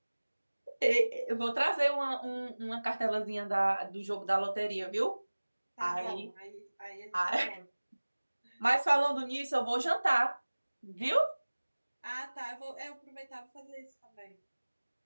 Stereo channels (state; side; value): inverted; both; correlation -1.00